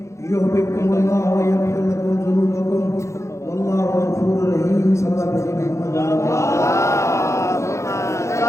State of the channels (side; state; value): right; late; 0.14 ms